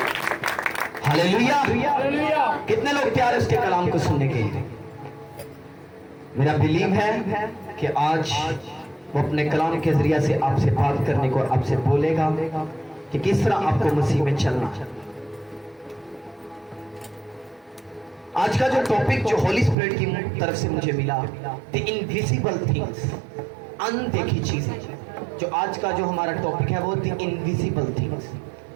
हालेलुया। कितने लोग तैयार है उसके कलाम को सुनने के लिए? मेरा बिलीव है कि आज वो अपने कलाम के जरिए से आपसे बात करने को, आपसे बोलेगा कि किस तरह आपको मसीह में चलना। आज का जो टॉपिक जो होली स्पिरिट की तरफ से मुझे मिला, द इनविजिबल थिंग्स, अनदेखी चीजें। जो आज का जो हमारा टॉपिक है वो द इनविजिबल थिंग्स,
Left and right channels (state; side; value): drops out; left; at 19.8 s